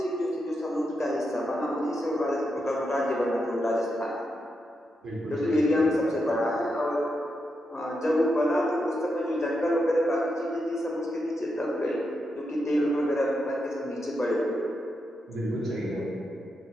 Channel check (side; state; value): both; normal; correlation 0.85